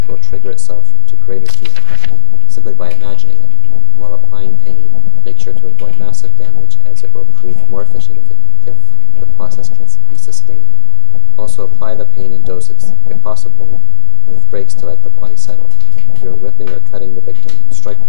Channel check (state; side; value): different; both; correlation 0.00